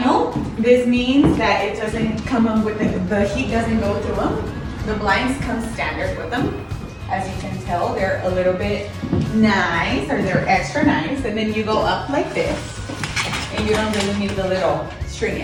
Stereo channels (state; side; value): identical; both; correlation 1.00